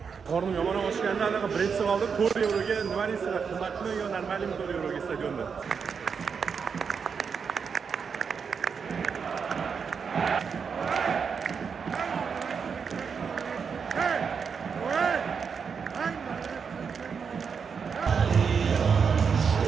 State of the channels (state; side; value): quieter; left; 6.1 dB